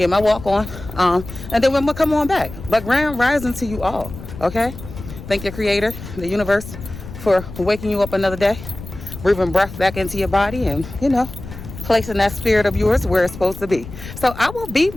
my walk on, and then we're gonna come on back. But grand rising to you all, okay? Thank your creator, the universe, for waking you up another day, breathing breath back into your body, and placing that spirit of yours where it's supposed to be. So I will be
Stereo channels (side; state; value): left; noise; rumble, 13 dB below the sound